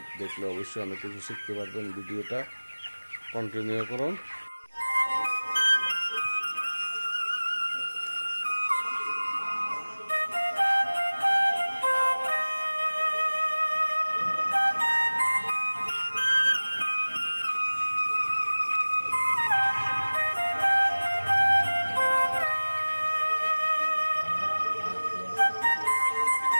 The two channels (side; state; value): both; inverted; correlation -1.00